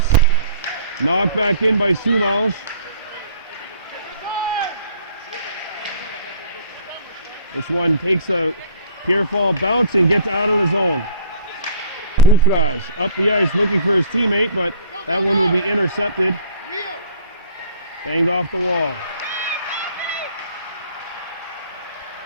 Knocked back in by Soulanges. This one takes a Pierrefonds bounce and gets out of the zone. Moufrage up the ice looking for his teammate, but that one will be intercepted. Banged off the wall.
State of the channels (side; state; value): both; inverted; correlation -0.49